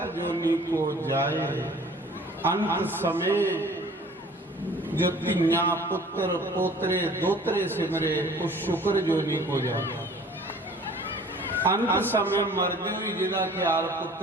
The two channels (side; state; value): both; normal; correlation 0.50